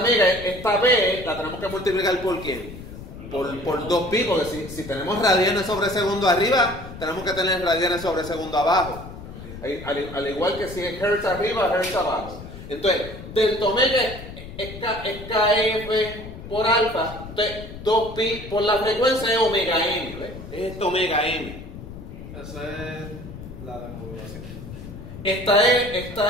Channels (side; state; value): left; noise; rumble, 13 dB below the sound